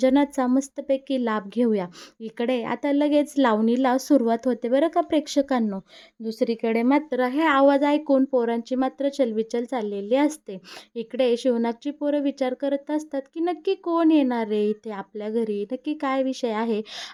मस्तपैकी लाभ घेऊया. इकडे आता लगेच लावणीला सुरुवात होते बरं का प्रेक्षकांनो. दुसरीकडे मात्र हे आवाज ऐकून पोरांची मात्र चलबिचल चाललेली असते. इकडे शिवनागची पोरं विचार करत असतात की नक्की कोण येणार रे इथे आपल्या घरी, नक्की काय विषय आहे.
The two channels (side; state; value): both; identical; correlation 1.00